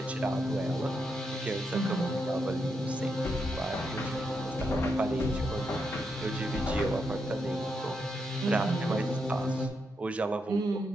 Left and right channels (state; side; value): normal; both; correlation 0.82